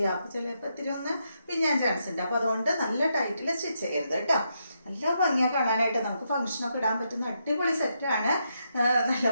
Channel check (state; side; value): inverted; both; correlation -0.81